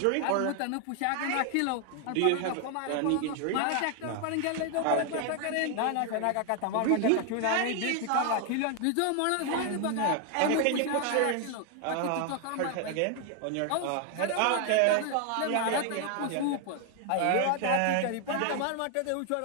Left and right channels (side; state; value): both; different; correlation 0.00